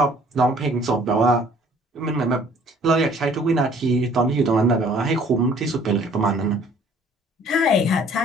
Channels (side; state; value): both; normal; correlation 0.56